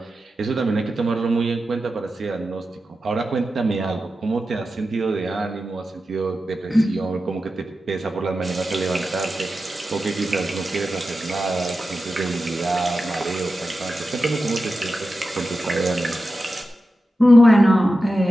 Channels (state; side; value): normal; both; correlation 0.92